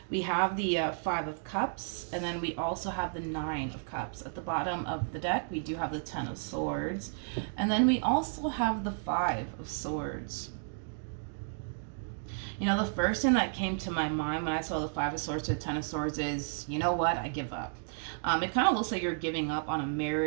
We have the Five of Cups, and then we also have the Nine of Cups. At the bottom of the deck, we do have the Ten of Swords, and then we also have the Five of Swords. You know, the first thing that came to my mind when I saw the Five of Swords to the Ten of Swords is, you know what, I give up. It kind of looks like you're giving up on a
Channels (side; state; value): left; silent; digital silence